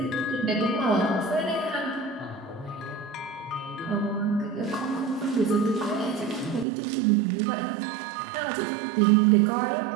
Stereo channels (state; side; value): drops out; left; at 6.7 s